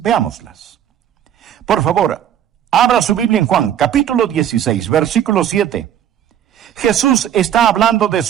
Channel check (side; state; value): left; quieter; 10.1 dB